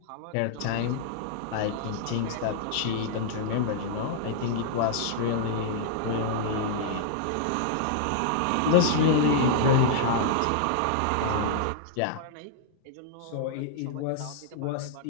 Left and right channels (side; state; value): both; different; correlation -0.01